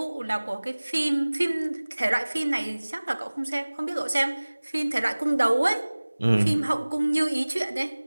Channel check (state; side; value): inverted; both; correlation -1.00